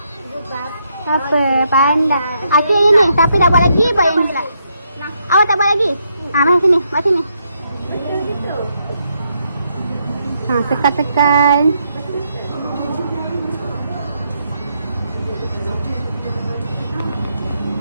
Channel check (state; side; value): inverted; both; correlation -0.78